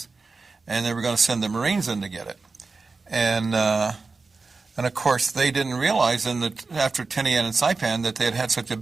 and they were going to send the Marines in to get it. And of course, they didn't realize after Tinian and Saipan that they had such a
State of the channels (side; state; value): left; quieter; 4.1 dB